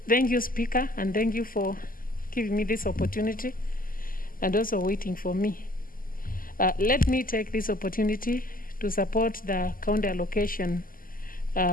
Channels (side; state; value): right; late; 0.41 ms